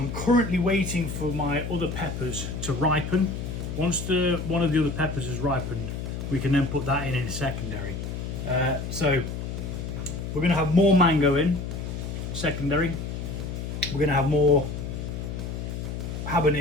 currently waiting for my other peppers to ripen. Once one of the other peppers has ripened, we can then put that in secondary. So we're going to have more mango in secondary. We're going to have more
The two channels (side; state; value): left; noise; hum, 5 dB below the sound